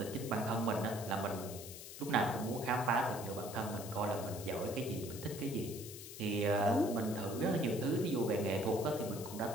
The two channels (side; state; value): left; noise; hiss, 12 dB below the sound